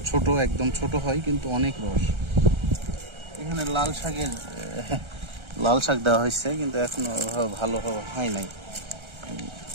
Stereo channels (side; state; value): left; late; 1.3 ms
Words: ছোট, একদম ছোট হয় কিন্তু অনেক রস। এখানে লাল শাক দেওয়া হয়েছে, কিন্তু এখনো ভালো হয় নাই,